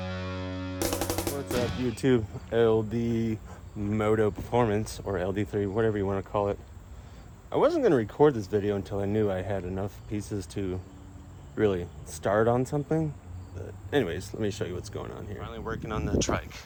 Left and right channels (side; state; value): both; identical; correlation 1.00